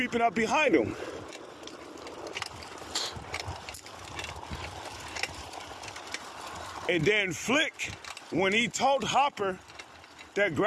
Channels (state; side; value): identical; both; correlation 1.00